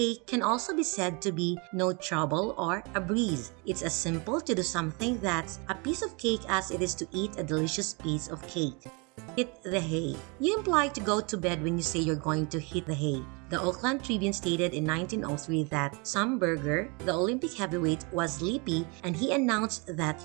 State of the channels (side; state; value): left; quieter; 30.7 dB